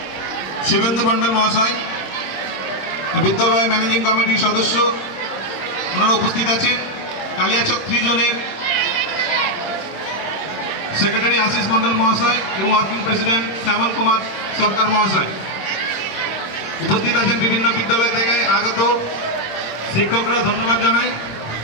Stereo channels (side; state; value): right; late; 26 ms